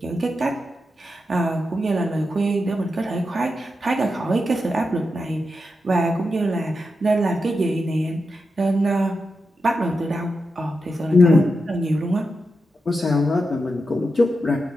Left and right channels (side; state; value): both; normal; correlation 0.88